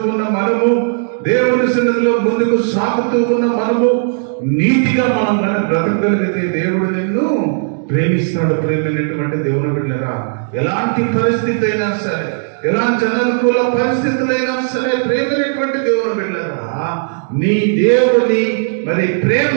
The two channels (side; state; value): left; silent; digital silence